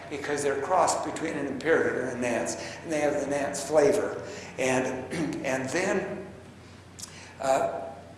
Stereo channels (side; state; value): both; identical; correlation 1.00